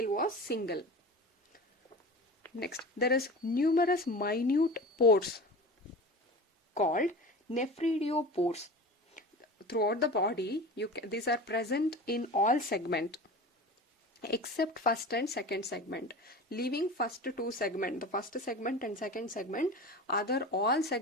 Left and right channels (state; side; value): normal; both; correlation 0.34